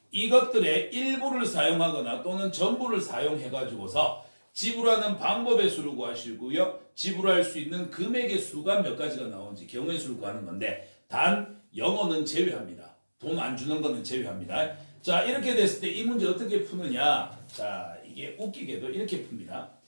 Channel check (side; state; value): both; inverted; correlation -1.00